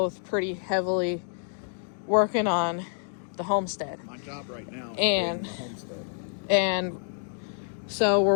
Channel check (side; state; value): right; silent; digital silence